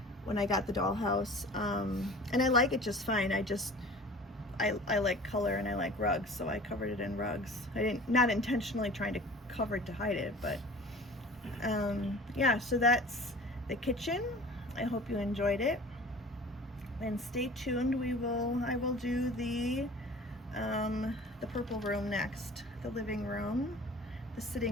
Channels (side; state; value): both; normal; correlation 0.42